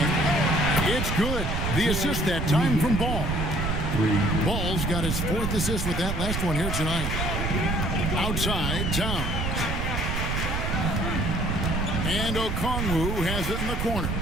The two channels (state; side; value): noise; right; rumble, 2 dB below the sound